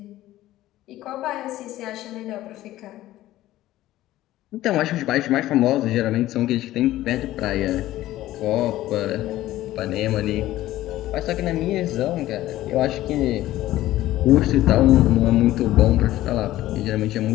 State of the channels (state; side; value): quieter; right; 15.2 dB